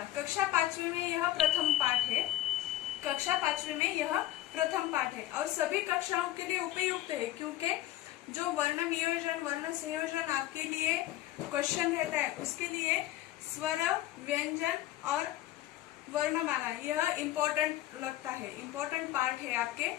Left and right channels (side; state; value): right; quieter; 14.8 dB